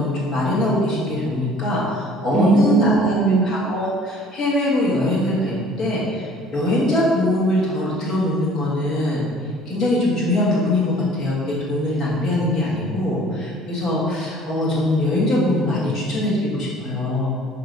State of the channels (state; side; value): normal; both; correlation 0.52